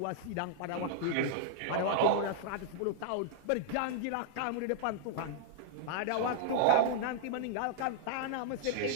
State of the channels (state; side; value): different; both; correlation -0.01